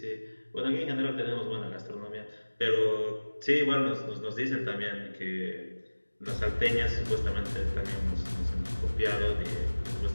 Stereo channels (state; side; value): inverted; both; correlation -1.00